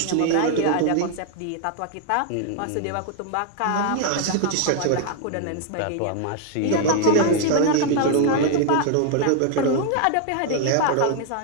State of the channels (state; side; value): different; both; correlation 0.00